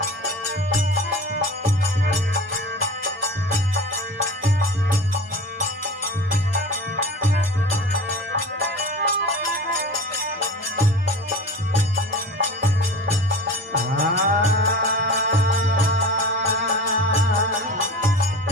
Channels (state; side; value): normal; both; correlation 0.35